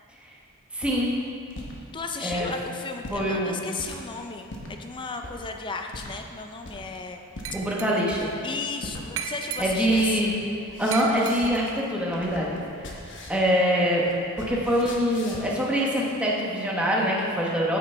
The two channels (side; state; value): both; normal; correlation 0.46